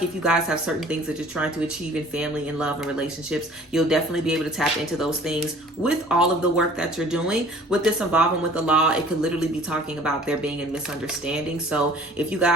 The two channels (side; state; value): both; normal; correlation 0.50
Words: if you guys have certain things that you're trying to achieve in family and love and relationships, you'll definitely be able to tap into those things with all of the work that you're doing. With this involvement with the law, it could literally be talking about there being a misunderstanding. So if